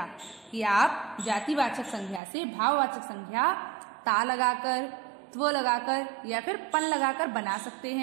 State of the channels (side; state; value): left; drops out; at 2.2 s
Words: कि आप जातिवाचक संज्ञा से भाववाचक संज्ञा ता लगाकर, त्व लगाकर या फिर पन लगाकर बना सकते